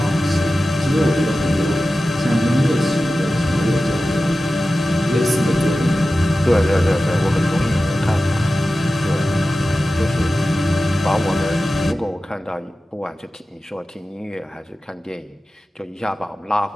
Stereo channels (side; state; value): both; normal; correlation 0.94